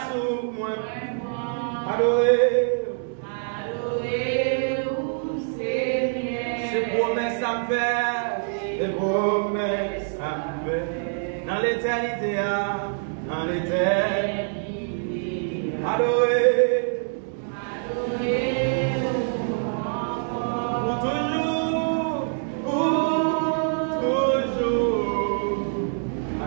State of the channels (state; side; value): silent; left; digital silence